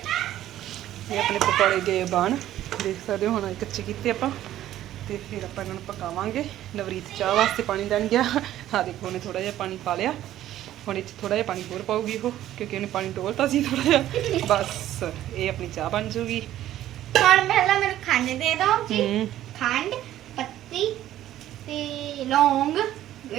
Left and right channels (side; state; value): left; quieter; 13.0 dB